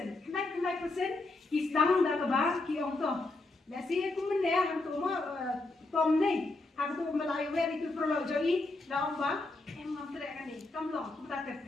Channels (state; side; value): quieter; right; 3.0 dB